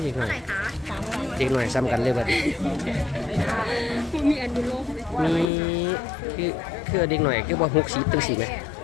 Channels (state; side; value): drops out; right; at 5.5 s